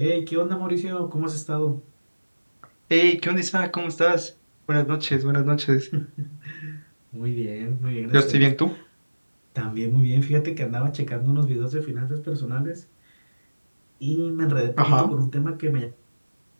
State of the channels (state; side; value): inverted; both; correlation -1.00